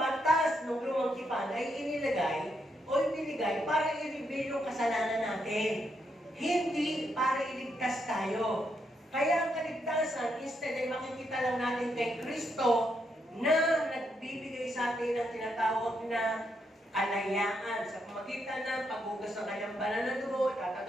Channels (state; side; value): normal; both; correlation 0.79